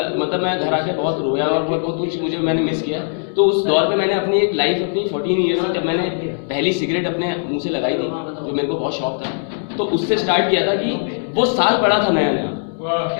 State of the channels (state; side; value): silent; right; digital silence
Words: मतलब मैं घर आके बहुत रोया और बहुत कुछ मुझे मैंने मिस किया। तो उस दौर पे मैंने अपनी एक लाइफ, अपनी 14 ईयर्स में जब मैंने पहली सिगरेट अपने मुंह से लगाई थी, जो मेरे को बहुत शौक था, तो उससे स्टार्ट किया था कि वो साल पड़ा था नया नया,